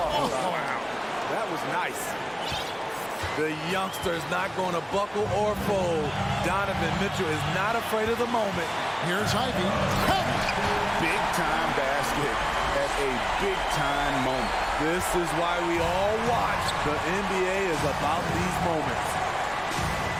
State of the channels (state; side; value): identical; both; correlation 1.00